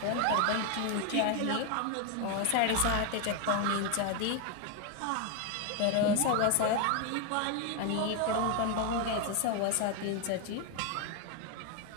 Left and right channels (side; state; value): both; different; correlation 0.01